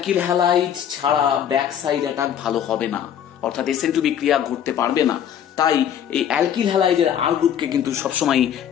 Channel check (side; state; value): right; quieter; 9.5 dB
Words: হ্যালাইড ছাড়া ব্যাক সাইড অ্যাটাক ভালো হবে না, অর্থাৎ SN2 বিক্রিয়া ঘটতে পারবে না। তাই এই অ্যালকিল হ্যালাইডের R গ্রুপকে কিন্তু সবসময়